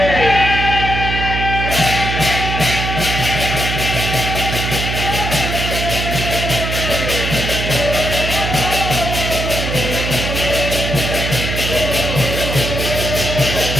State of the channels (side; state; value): right; noise; hum, 3 dB below the sound